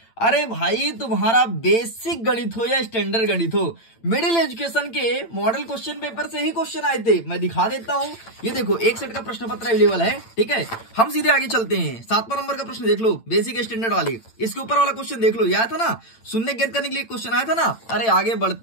अरे भाई, तुम्हारा बेसिक गणित हो या स्टैंडर्ड गणित हो, मिडिल एजुकेशन के मॉडल क्वेश्चन पेपर से ही क्वेश्चन आए थे। मैं दिखा देता हूं, ये देखो एक सेट का प्रश्न पत्र अवेलेबल है। ठीक है, हम सीधे आगे चलते हैं। 7वां नंबर का प्रश्न देख लो, बेसिक स्टैंडर्ड वाली। इसके ऊपर वाला क्वेश्चन देख लो, ये आया था ना, शून्य ज्ञात करने के लिए क्वेश्चन आया था ना। अरे आगे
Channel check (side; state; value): right; late; 8.9 ms